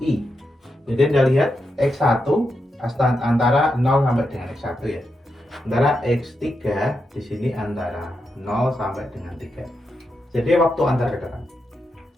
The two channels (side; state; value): both; normal; correlation 0.85